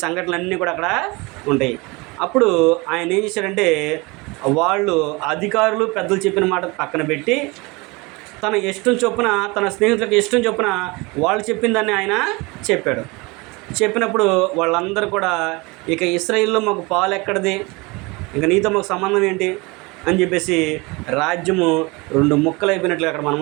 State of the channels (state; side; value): quieter; left; 25.6 dB